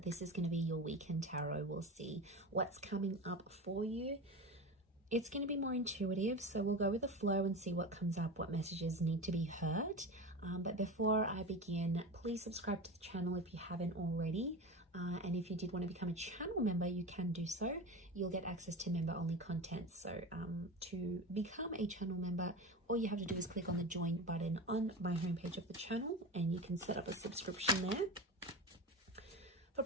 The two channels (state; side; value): normal; both; correlation 0.26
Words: This is going to be your weekend tarot. We'll see what's coming up for you. It's going to be more intuitive, so we'll go with the flow and see what comes up, what messages need to be heard. But before I begin, please subscribe to the channel if you haven't already. And if you did want to become a channel member, you can do so. You'll get access to member-only content. So to become a channel member, all you have to do is click on the join button on my homepage of the channel, and you can set up a subscription there. For